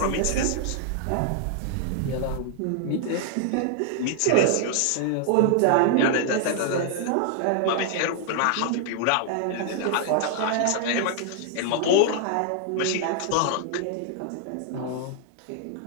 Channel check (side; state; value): both; different; correlation -0.01